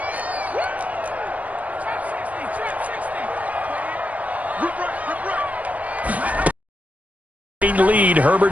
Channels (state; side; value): late; left; 0.070 ms